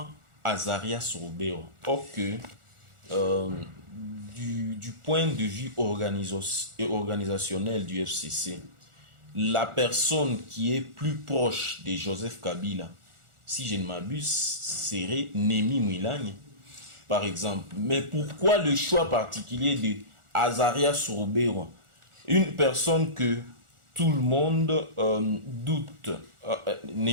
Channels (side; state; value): left; late; 1.4 ms